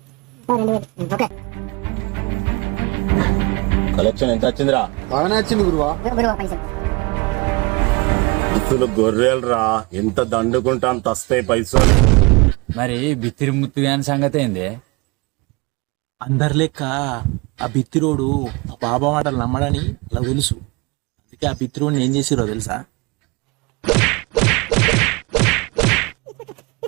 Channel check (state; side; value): quieter; left; 27.1 dB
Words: 2000. ఓకే కలెక్షన్ ఎంత వచ్చిందిరా? బాగానే వచ్చింది గురువా. గురువా పైసలు ఇస్తులు గొర్రెలు రా, ఎంత దండుకుంటా అంత వస్తాయి పైసలు. మరి బిత్తిరి ముత్తుగాని సంగతి ఏంది? అందరి లెక్క ఆ బిత్తిరోడు ఆ బాబా మాటలు నమ్మడని అలా తెలుసు. అందుకే ఆ బిత్తిరోడిని ఏం చేసిరో తెలుసా?